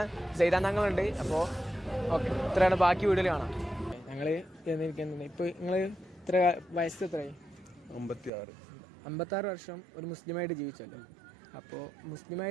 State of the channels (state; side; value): drops out; left; at 8.3 s